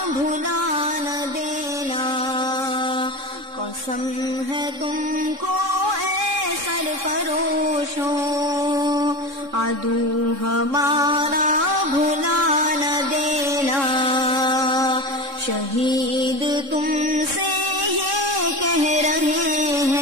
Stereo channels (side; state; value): left; late; 3.6 ms